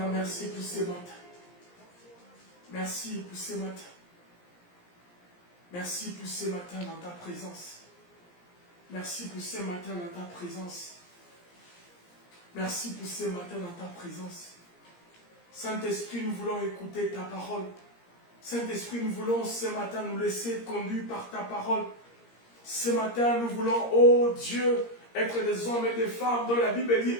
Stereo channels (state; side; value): late; right; 17 ms